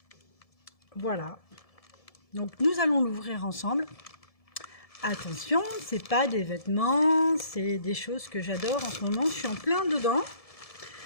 voilà. Donc nous allons l'ouvrir ensemble. Attention, c'est pas des vêtements, c'est des choses que j'adore en ce moment. Je suis en plein dedans.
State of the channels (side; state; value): right; late; 1.7 ms